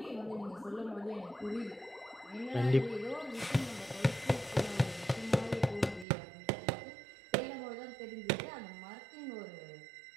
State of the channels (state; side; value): drops out; left; at 6.1 s